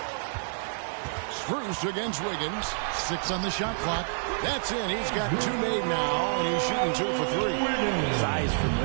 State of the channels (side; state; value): left; silent; digital silence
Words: Strus against Wiggins. 6 on the shot clock. That's it. He's got 2 made now, and he's shooting 2 for 3. Size from